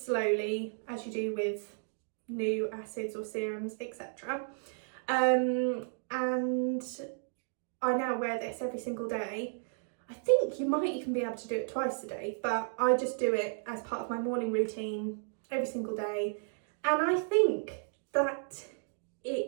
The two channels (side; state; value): left; silent; digital silence